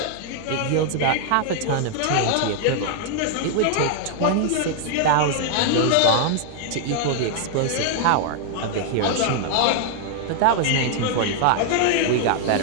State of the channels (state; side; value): different; both; correlation 0.00